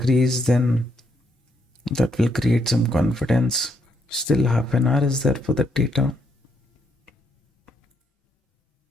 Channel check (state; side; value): normal; both; correlation 0.75